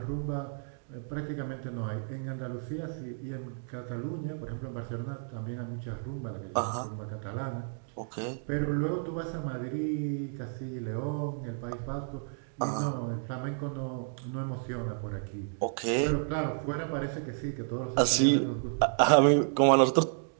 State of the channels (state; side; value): silent; left; digital silence